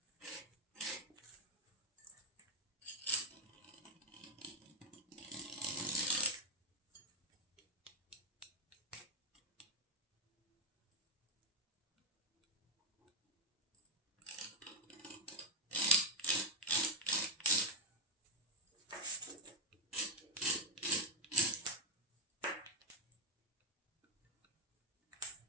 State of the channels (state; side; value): normal; both; correlation 0.02